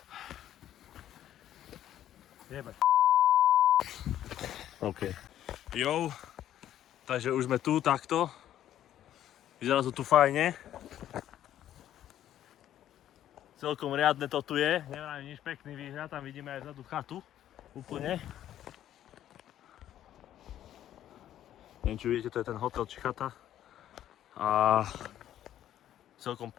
Jebe. OK. Jo, takže už sme tu takto. Vyzerá to tu fajne. Celkom riadne to tu je, neviem nič, pekný výhľad, tam vidíme aj vzadu chatu, úplne. Neviem, či vidíte, to je ten hotel či chata. A celkom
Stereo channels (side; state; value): right; quieter; 11.6 dB